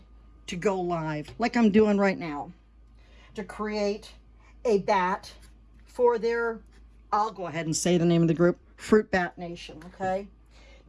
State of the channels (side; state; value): both; identical; correlation 1.00